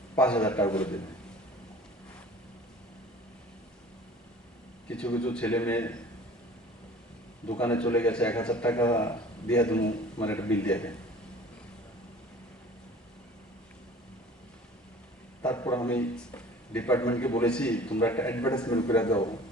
5,000 টাকা করে দেবে। কিছু কিছু ছেলে মেয়ে দোকানে চলে গেছে 1,000 টাকা দিয়ে তুমি মানে একটা বিল দিয়ে দেন। তারপর আমি ডিপার্টমেন্টকে বলেছি তোমরা একটা অ্যাডভার্টাইজমেন্ট করে দাও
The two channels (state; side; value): normal; both; correlation 0.46